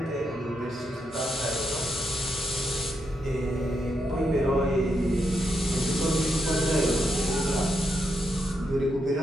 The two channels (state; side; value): normal; both; correlation 0.81